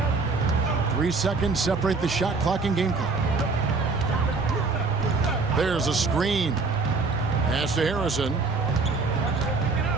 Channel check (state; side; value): quieter; left; 4.0 dB